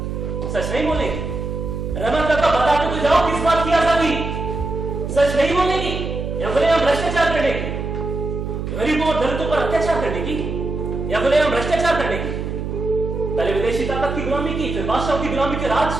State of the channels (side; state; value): right; noise; hum, 4 dB below the sound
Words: सच नहीं बोलेगी? रहमत काका, बताते तो जाओ, किस बात की आजादी? सच नहीं बोलेगी या बोले हम भ्रष्टाचार करने की, गरीबों और दलितों पर अत्याचार करने की, या बोले हम भ्रष्टाचार करने की? पहले विदेशी ताकत की गुलामी की, फिर बादशाहों की गुलामी, फिर